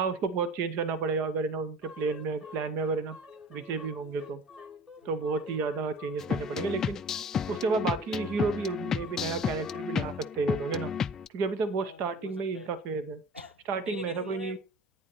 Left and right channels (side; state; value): both; normal; correlation 0.42